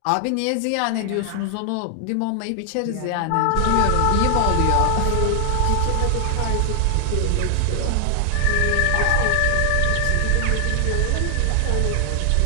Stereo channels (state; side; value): different; both; correlation 0.00